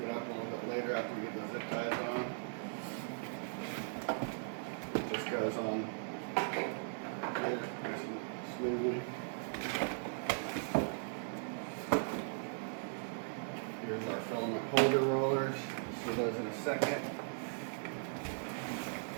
it up a little bit later after we get the zip ties on. It just goes on here nice and smoothly. Here's our filament holder rollers. See those in a second.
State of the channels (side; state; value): left; silent; 52 dB below the other